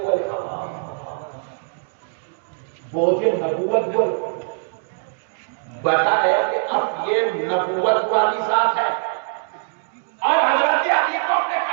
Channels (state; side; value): silent; left; digital silence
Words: بوجھے نبوت بول بتایا کہ اب یہ نبوت والی ذات ہے، اور حضرت علی کو اپنے